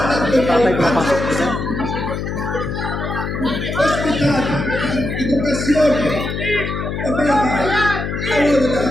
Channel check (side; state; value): left; noise; hum, 4 dB below the sound